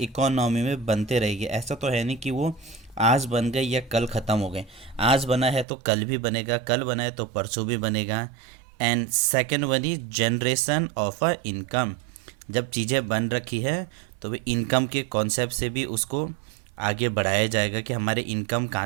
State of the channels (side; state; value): left; drops out; at 5.7 s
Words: इकोनॉमी में बनते रहेगी, ऐसा तो है नहीं कि वो आज बन गए या कल ख़त्म हो गए। आज बना है तो कल भी बनेगा, कल बना है तो परसों भी बनेगा। And second one is generation of a income, जब चीज़ें बन रखी है तो वे इनकम के कॉन्सेप्ट से भी उसको आगे बढ़ाया जाएगा कि हमारे इनकम